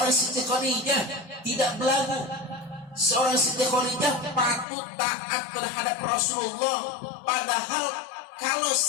Siti Khadijah tidak belagu. Seorang Siti Khadijah patut taat terhadap Rasulullah. Padahal kalau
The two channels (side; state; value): right; drops out; at 4.7 s